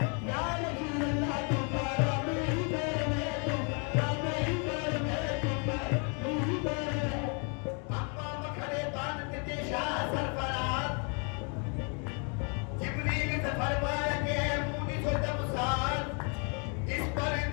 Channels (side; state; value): right; quieter; 37.4 dB